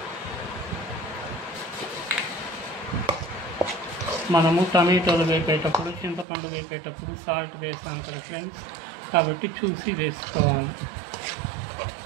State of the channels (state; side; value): drops out; left; at 6.2 s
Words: మనము టమాటోలు వేపేటప్పుడు, చింతపండు వేపేటప్పుడు సాల్ట్ వేసాం కదా ఫ్రెండ్స్, కాబట్టి చూసి వేసుకోవాలి.